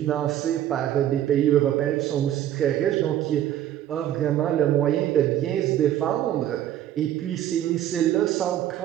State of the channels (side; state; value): left; quieter; 11.9 dB